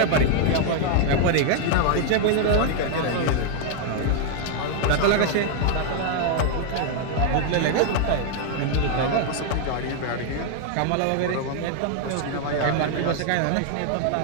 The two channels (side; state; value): both; different; correlation 0.00